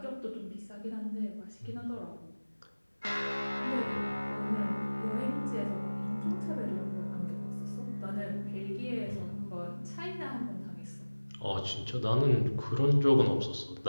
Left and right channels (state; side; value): inverted; both; correlation -1.00